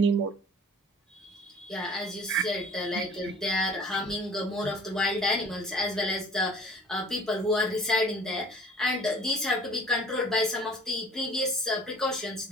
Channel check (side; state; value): both; normal; correlation 0.48